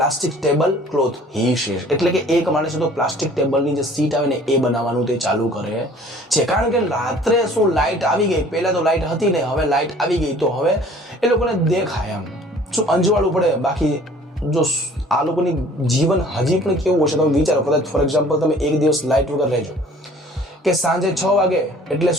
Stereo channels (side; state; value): both; normal; correlation 0.51